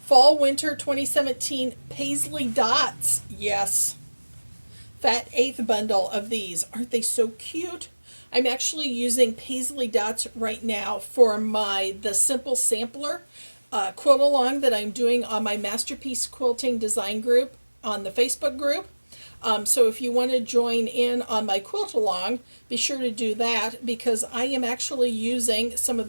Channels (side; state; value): both; inverted; correlation -1.00